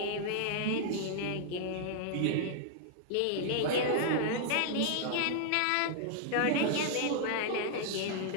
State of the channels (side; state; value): both; different; correlation -0.01